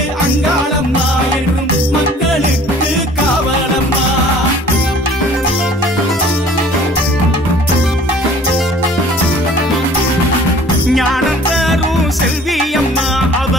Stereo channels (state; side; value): normal; both; correlation 0.50